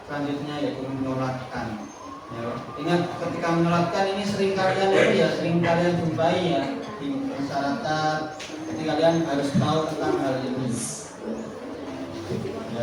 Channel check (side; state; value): both; identical; correlation 1.00